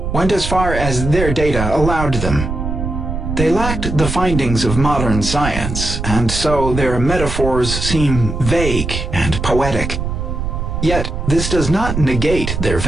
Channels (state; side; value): noise; right; rumble, 4 dB below the sound